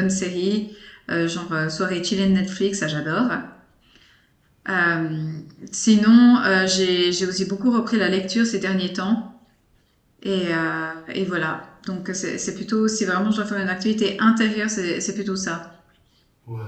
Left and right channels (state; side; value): identical; both; correlation 1.00